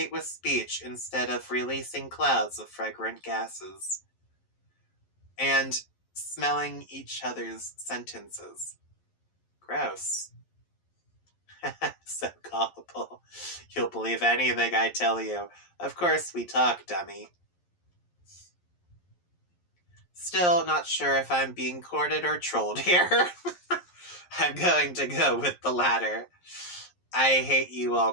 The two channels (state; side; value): late; right; 11 ms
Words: with speech instead of releasing clouds of fragrant gases. And smelling each other's sentences. Gross. So gullible. You'll believe anything I tell you. Of course we talk, dummy. Still not sure if I'm being courted or trolled here. I'm going to go with the latter. I hate you all